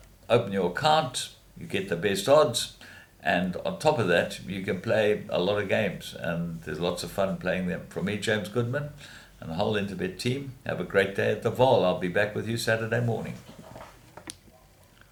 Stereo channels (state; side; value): identical; both; correlation 1.00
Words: open your account, you get the best odds, and on top of that, you can play a lot of games, and there's lots of fun playing them. From me, James Goodman, and the whole Interbet team, have a great day at the Vaal. I'll be back with you Saturday morning.